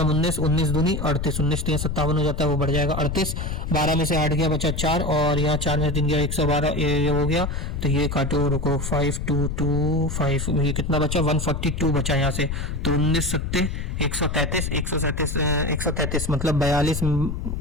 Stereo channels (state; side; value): noise; left; rumble, 3 dB below the sound